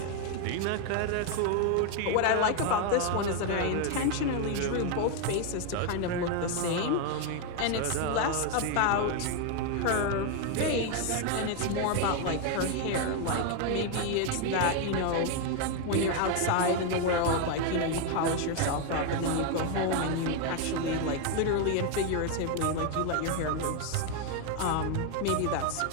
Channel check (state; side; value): different; both; correlation 0.01